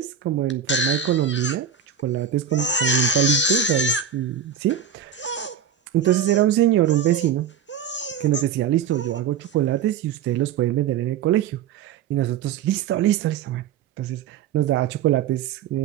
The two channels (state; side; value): quieter; left; 8.1 dB